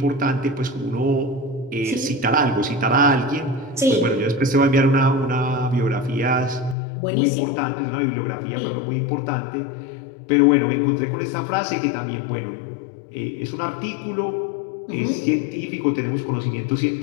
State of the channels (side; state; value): right; drops out; at 6.8 s